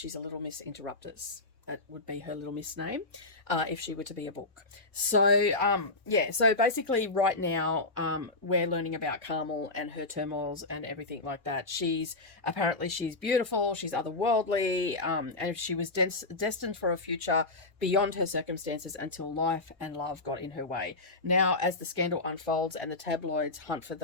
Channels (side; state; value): right; quieter; 3.2 dB